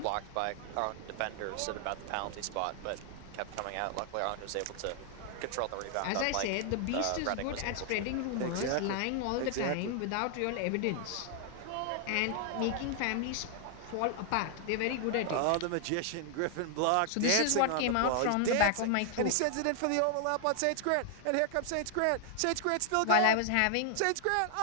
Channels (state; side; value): different; both; correlation 0.00